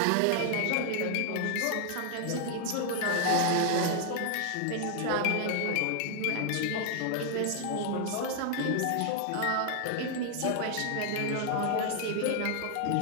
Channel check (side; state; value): both; different; correlation 0.00